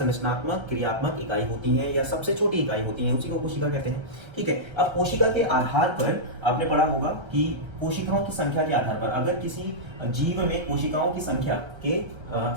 क्रियात्मक इकाई होती हैं, या सबसे छोटी इकाई होती हैं, उसी को कोशिका कहते हैं। ठीक है। अब कोशिका के आधार पर आपने पढ़ा होगा कि कोशिकाओं की संख्या के आधार पर, अगर किसी जीव में कोशिका की संख्या के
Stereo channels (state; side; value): late; left; 1.3 ms